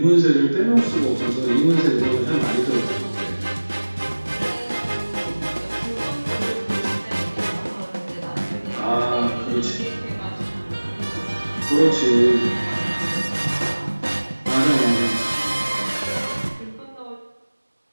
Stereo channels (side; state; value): both; inverted; correlation -1.00